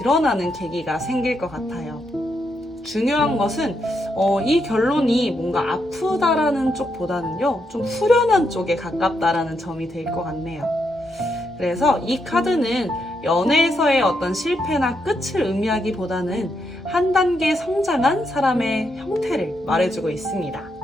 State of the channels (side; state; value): both; normal; correlation 0.80